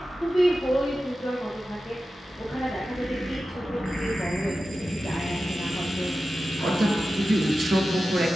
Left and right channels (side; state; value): both; normal; correlation 0.93